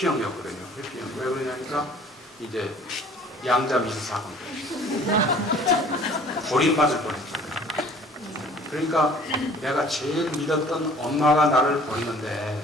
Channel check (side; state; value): both; normal; correlation 0.52